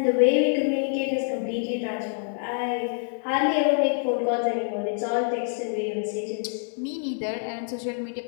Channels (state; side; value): silent; right; 59 dB below the other